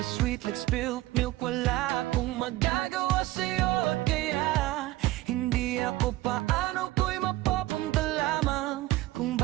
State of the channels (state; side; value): quieter; left; 17.3 dB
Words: sweet like spilled milk. Wala akong magagawa sa'yo, kaya hindi ako paano ko'y mapapunta lamang. Kung